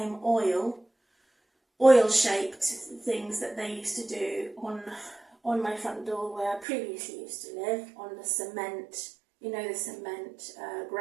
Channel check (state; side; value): drops out; left; at 6.7 s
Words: oil-shaped things that they used to do on my front door where I previously used to live, on the cement, the cement